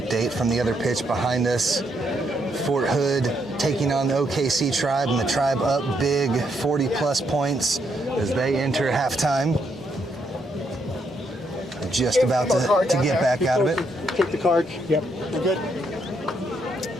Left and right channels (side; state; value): both; normal; correlation 0.76